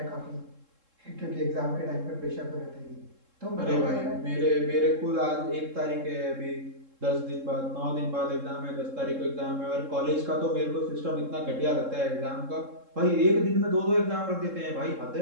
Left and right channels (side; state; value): left; late; 3.7 ms